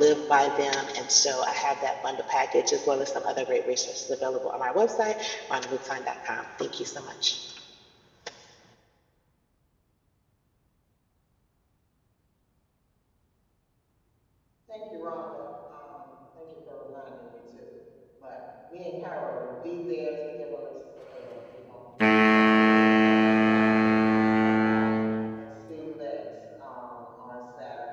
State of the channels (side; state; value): both; identical; correlation 1.00